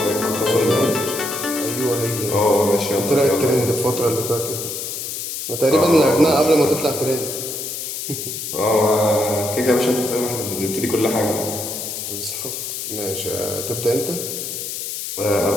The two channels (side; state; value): left; noise; hiss, 5 dB below the sound